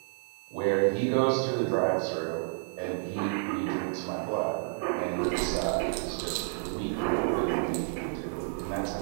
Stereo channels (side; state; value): left; silent; 58 dB below the other